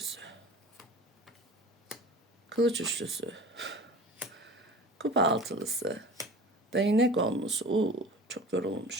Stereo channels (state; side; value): normal; both; correlation 0.39